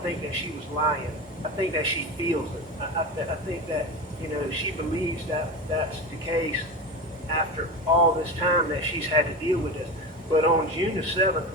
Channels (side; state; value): both; normal; correlation 0.24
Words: think that she was lying. I think that she feels it. I think that, she believes that that's the case after all this time that she's had to deal with this. But on June the 7th,